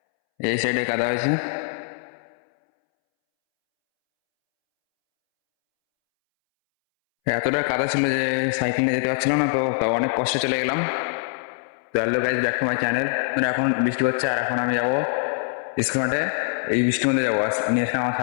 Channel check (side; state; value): right; silent; 63 dB below the other